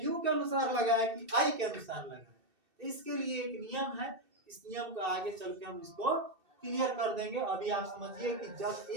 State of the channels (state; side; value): late; left; 2.7 ms